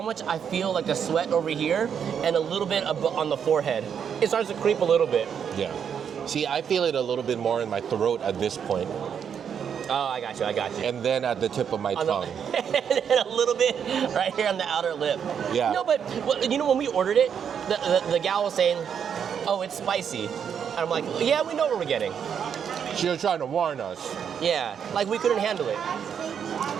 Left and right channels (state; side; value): quieter; left; 7.8 dB